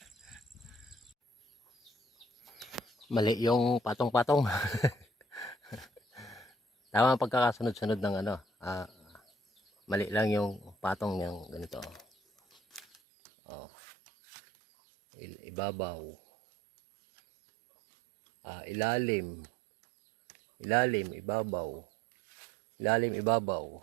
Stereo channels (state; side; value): drops out; left; at 13.0 s